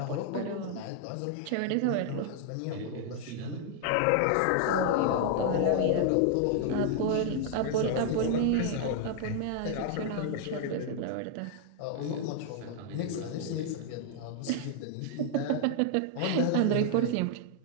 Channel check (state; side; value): different; both; correlation 0.00